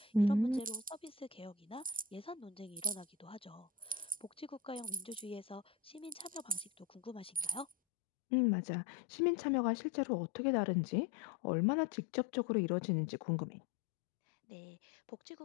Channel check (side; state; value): right; drops out; at 7.8 s